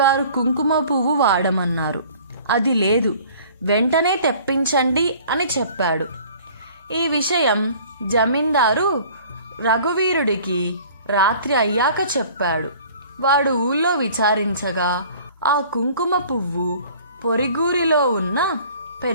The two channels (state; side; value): inverted; both; correlation -0.50